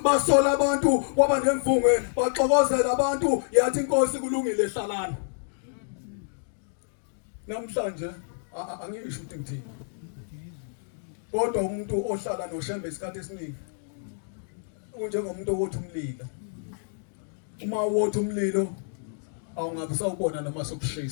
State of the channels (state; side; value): silent; right; digital silence